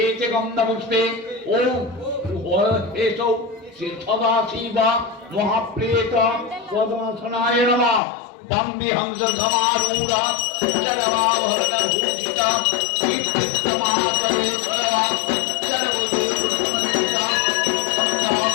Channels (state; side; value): drops out; right; at 8.0 s